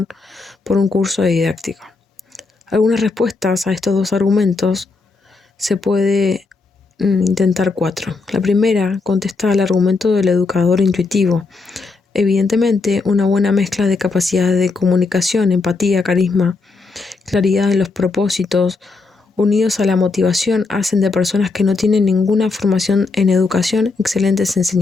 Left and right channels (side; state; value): right; quieter; 4.0 dB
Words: por un curso de didáctica. Algunas respuestas a estos dos argumentos se puede intentar 4. La primera contesta al argumento del educador intuitivo. Evidentemente, una buena mezcla de capacidades de comunicación, empatía, carisma, claridad en los propósitos, unidos a la motivación, hacen de personas que no tienen ninguna formación en educación excelentes